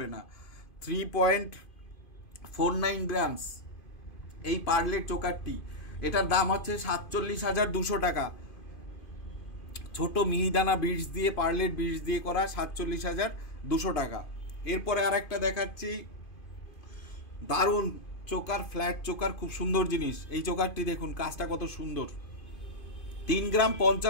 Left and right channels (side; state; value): right; late; 2.5 ms